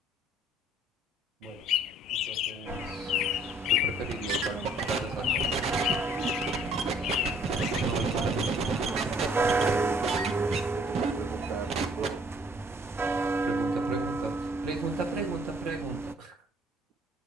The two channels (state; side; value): normal; both; correlation 0.61